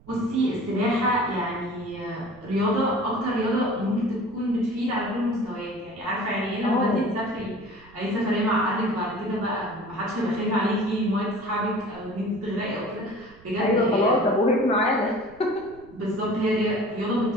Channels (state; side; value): noise; right; rumble, 25 dB below the sound